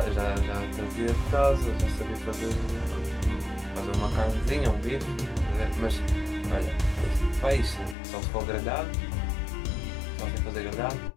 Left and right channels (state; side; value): drops out; right; at 8.0 s